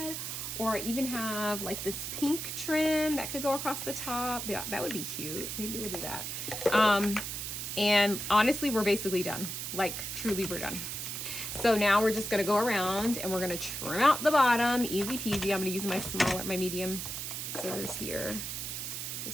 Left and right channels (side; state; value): right; noise; hiss, 5 dB below the sound